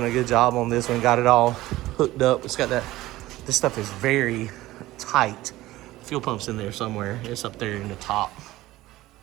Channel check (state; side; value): quieter; left; 17.1 dB